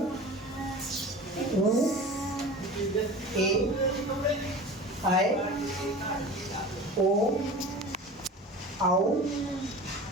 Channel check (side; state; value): both; normal; correlation 0.36